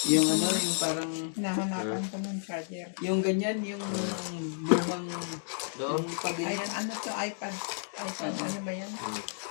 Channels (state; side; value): silent; right; digital silence